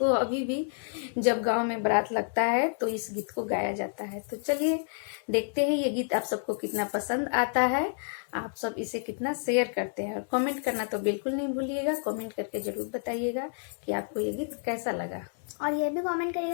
अभी भी जब गांव में बारात लगता है तो इस गीत को गाया जाता है। तो चलिए देखते हैं ये गीत आप सबको कितना पसंद आता है, आप सब इसे कितना शेयर करते हैं। और कमेंट करना तो बिल्कुल नहीं भूलिएगा, कमेंट करके जरूर बताइएगा कि आपको ये गीत कैसा लगा। और ये भी कमेंट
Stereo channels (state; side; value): silent; right; digital silence